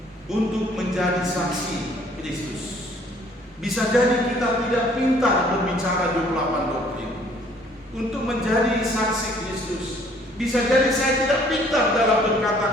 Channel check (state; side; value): normal; both; correlation 0.59